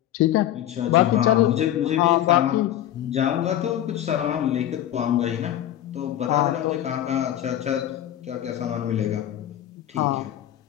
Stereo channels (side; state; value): right; quieter; 12.1 dB